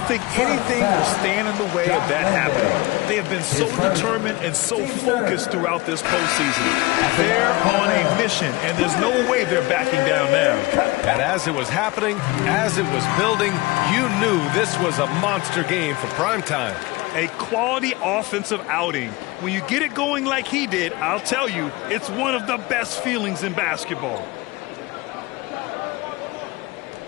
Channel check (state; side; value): quieter; right; 21.8 dB